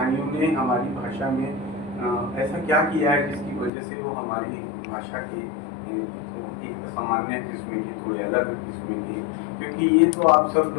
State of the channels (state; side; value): drops out; right; at 3.7 s